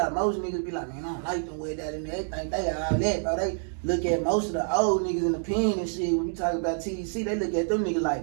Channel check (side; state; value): left; silent; 60 dB below the other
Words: most niggas be like, man, I don't like them West Dallas, and they think they all that, bro. They look at most of the old niggas in the pen and shit. When you talk about TDC, they look at them niggas